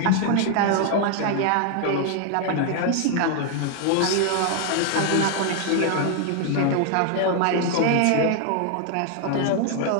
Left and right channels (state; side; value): different; both; correlation 0.00